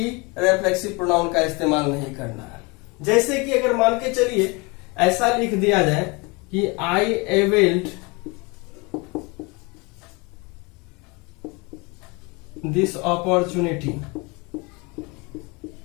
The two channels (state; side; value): quieter; right; 27.8 dB